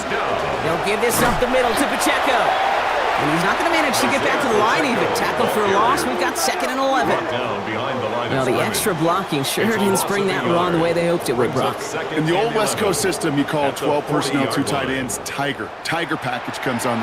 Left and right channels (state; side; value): identical; both; correlation 1.00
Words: down. They'll give this up the middle to Pacheco. And he's not going to manage to get back to the line even. Tackle for a loss. We've got 2nd and 11. Well, the extra blocking sure didn't spring that wrong the way they hoped it would, Brock. In the old West Coast system, you call 12 personnel, 2 tight ends, Tiger. Tiger package comes on